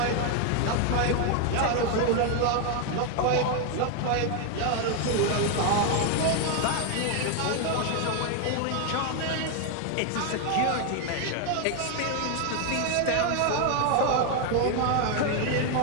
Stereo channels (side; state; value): both; different; correlation 0.01